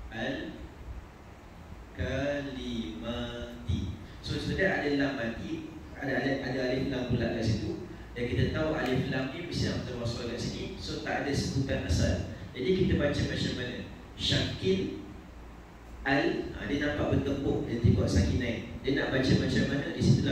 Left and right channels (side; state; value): both; identical; correlation 1.00